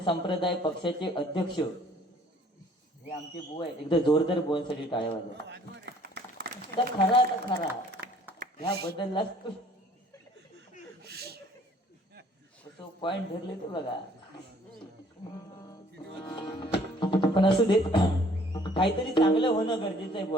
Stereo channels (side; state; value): both; normal; correlation 0.57